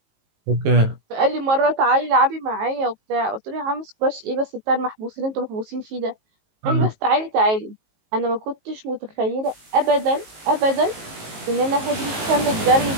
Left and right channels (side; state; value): left; late; 19 ms